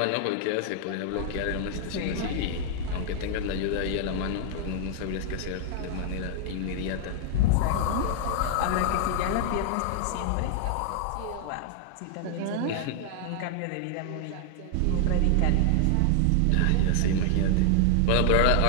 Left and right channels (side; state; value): both; different; correlation 0.00